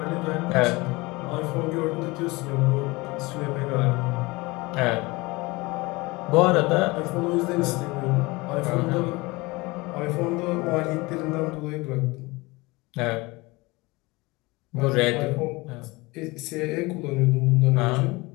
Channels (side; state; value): right; quieter; 23.4 dB